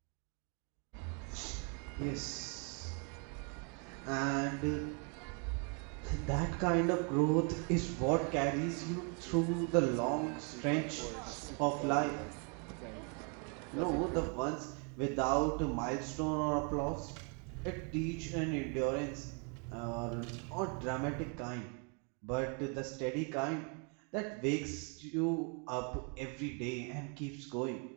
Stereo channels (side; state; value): left; quieter; 36.9 dB